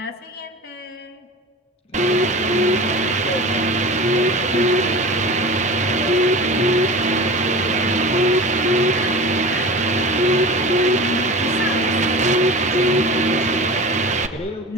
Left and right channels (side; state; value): both; normal; correlation 0.34